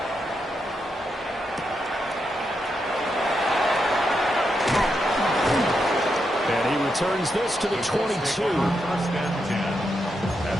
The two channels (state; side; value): normal; both; correlation 0.83